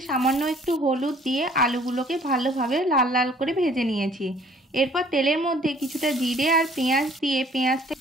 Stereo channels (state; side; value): normal; both; correlation 0.56